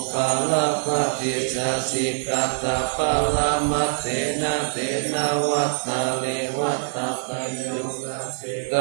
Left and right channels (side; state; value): left; silent; 63 dB below the other